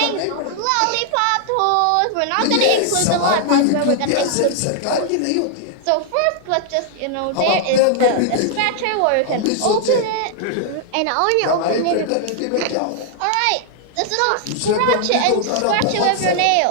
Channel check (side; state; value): both; different; correlation 0.00